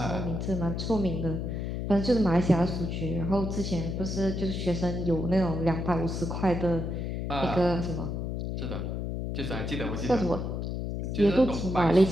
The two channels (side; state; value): left; noise; hum, 3 dB below the sound